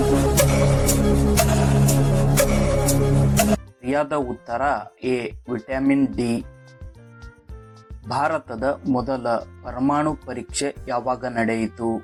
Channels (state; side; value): identical; both; correlation 1.00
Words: ಸರಿಯಾದ ಉತ್ತರ ಎ ವಿಟಮಿನ್ ಡಿ. ಭಾರತದ ಮೊದಲ ಪರಮಾಣು ಪರೀಕ್ಷೆ ಯಾವಾಗ ನಡೆಯಿತು?